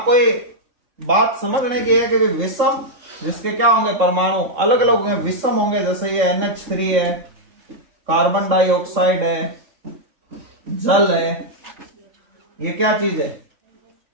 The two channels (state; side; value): late; left; 3.6 ms